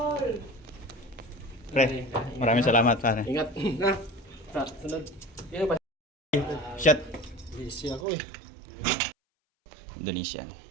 Pre, maraming salamat pare. Ingat. Na. Sunod. Shot. Busy ako eh. Indonesian.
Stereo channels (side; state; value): left; drops out; at 8.1 s